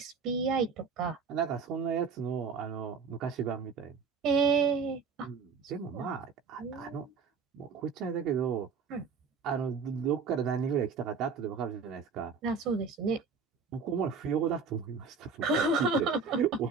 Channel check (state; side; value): quieter; left; 5.4 dB